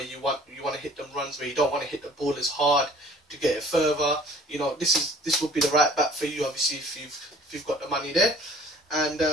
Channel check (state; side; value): normal; both; correlation 0.51